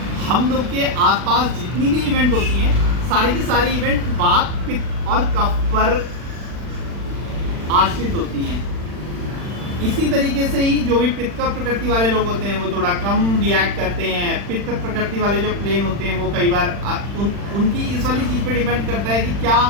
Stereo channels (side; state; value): left; late; 40 ms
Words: हम लोग के आसपास जितनी भी इवेंट होती हैं, सारी की सारी इवेंट वात, पित्त और कफ पर आश्रित होती हैं। इसी तरीके से ही जो भी पित्त का प्रकृति वाले लोग होते हैं वो थोड़ा कम रिएक्ट करते हैं। पित्त प्रकृति वाले जो प्लेन होते हैं वो कई बार उनकी इस वाली चीज़ पे डिपेंड करता है कि क्या